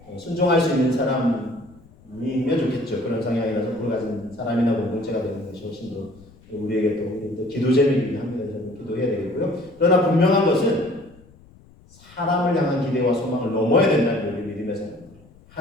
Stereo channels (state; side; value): noise; left; rumble, 26 dB below the sound